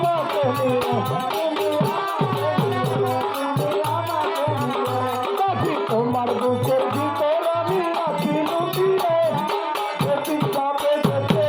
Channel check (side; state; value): both; identical; correlation 1.00